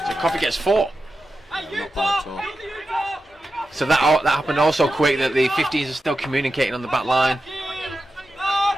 So Coffee gets 4. Not bad at all. So that happened also quick that the 15s are still communicating on the back line.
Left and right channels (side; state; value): both; normal; correlation 0.91